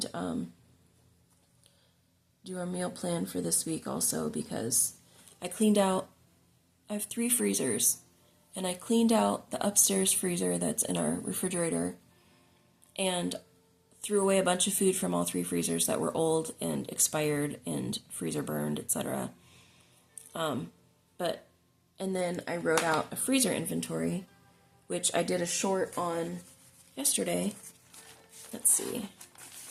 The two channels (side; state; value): both; identical; correlation 1.00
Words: do our meal plan for this week also, because I cleaned out, I have 3 freezers, and I cleaned out the upstairs freezer that's in our refrigerator, and threw away a bunch of food from all 3 freezers that were old and expired and freezer burned, etc. And then I wrote out a freezer inventory, which I did a short on yesterday. Let's see.